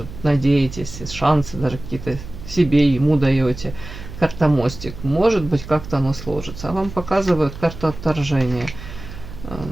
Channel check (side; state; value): right; noise; hum, 13 dB below the sound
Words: надеетесь, шансы даже какие-то себе, ему даете. Карта мостик. Может быть, как-то оно сложится. А вам показывают карту отторжения.